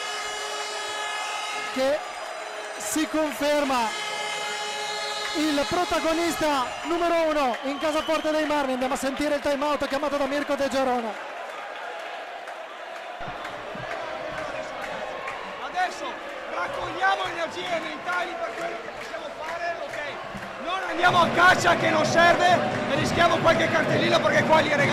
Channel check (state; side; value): identical; both; correlation 1.00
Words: che si conferma il protagonista numero 1 in casa Forte dei Marmi. Andiamo a sentire il time out chiamato da Mirko De Gerona. Adesso raccogliamo energie mentali per quello che possiamo fare, ok? Non andiamo a caccia che non serve e rischiamo qualche cartellino perché qua li